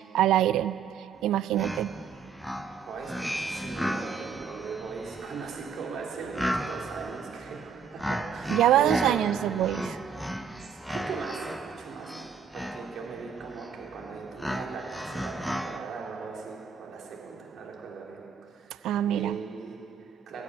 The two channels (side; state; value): left; quieter; 6.8 dB